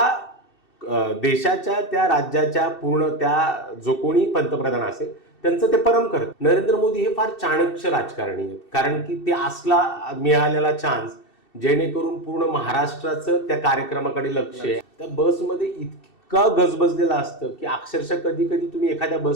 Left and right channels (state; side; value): late; right; 2.7 ms